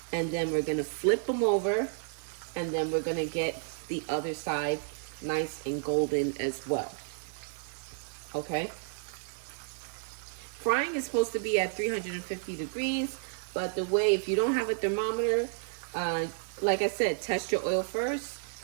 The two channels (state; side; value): silent; left; 56 dB below the other